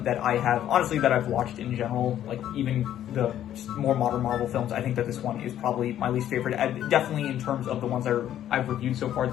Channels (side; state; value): right; quieter; 11.4 dB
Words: that I have, honestly, that I've watched in general. Like, even the more modern Marvel films, I think that this one is probably my least favorite. Definitely in terms of the ones I've reviewed so far,